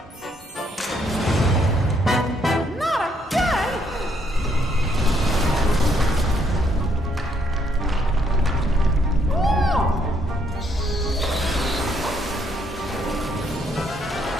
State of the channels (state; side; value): normal; both; correlation 0.71